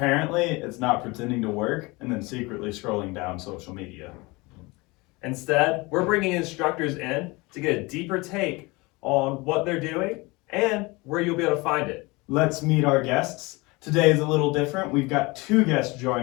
it's not pretending to work and then secretly scrolling down social media. Instead, we're bringing instructors in to get a deeper take on what they're doing and where you'll be able to find it. Let's meet our guests. Today is a little different. We've got two guests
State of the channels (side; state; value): right; quieter; 24.4 dB